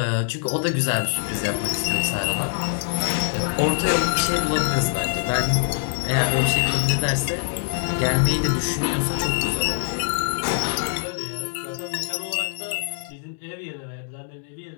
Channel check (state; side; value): silent; right; 63 dB below the other